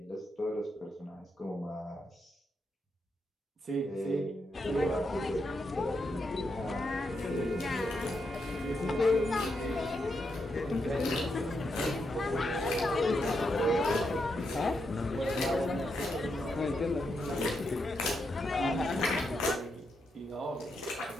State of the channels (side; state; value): both; normal; correlation 0.82